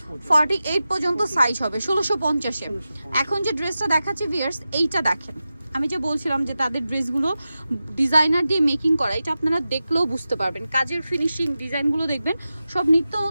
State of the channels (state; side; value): inverted; both; correlation -0.93